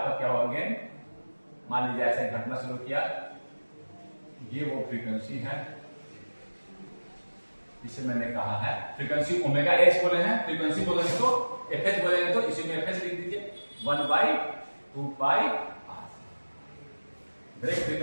क्या हुआ गेन? मान लीजिए ऐसे घटना शुरू किया, ये वो फ्रीक्वेंसी है इसे मैंने कहा है फ्रीक्वेंसी ओमेगा एच बोले हैं, फ्रीक्वेंसी बोलेंगे तो एफएच बोलेंगे तो इसी में एफएच लिख दीजिए 1/2π r। ब्रेक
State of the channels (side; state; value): both; inverted; correlation -1.00